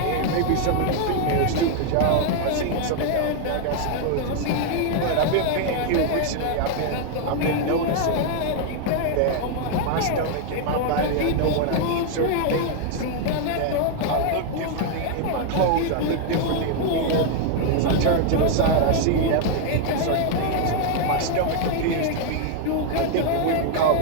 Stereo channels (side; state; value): both; different; correlation 0.00